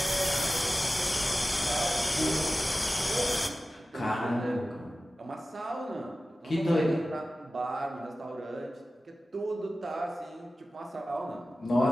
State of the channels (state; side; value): normal; both; correlation 0.95